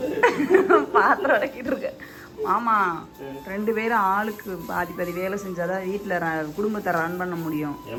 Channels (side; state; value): both; identical; correlation 1.00